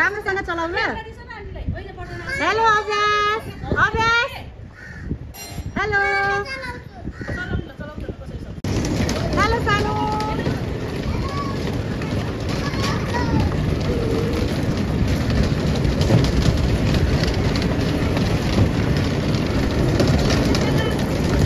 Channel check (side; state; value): both; identical; correlation 1.00